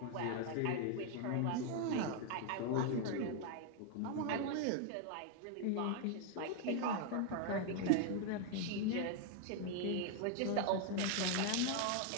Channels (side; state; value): both; different; correlation 0.01